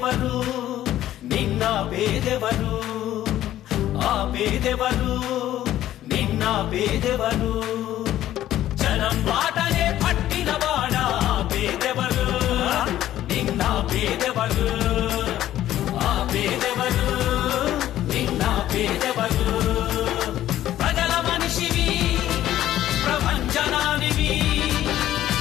నిన్న పేదెవరు ఆ పేదెవరు నిన్న పేదెవరు జనం బాటనే పట్టినవాడా పేదెవరు నిన్న పేదెవరు ఆ పేదెవరు నిన్న పేదెవరు ప్రజల మనిషివి ప్రపంచనానివి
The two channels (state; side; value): quieter; right; 13.0 dB